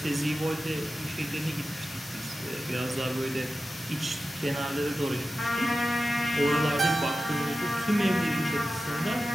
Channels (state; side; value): normal; both; correlation 0.93